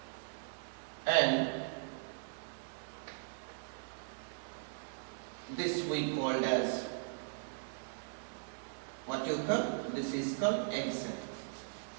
And this we called as what you call, this is called egg cell.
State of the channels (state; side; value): silent; left; 52 dB below the other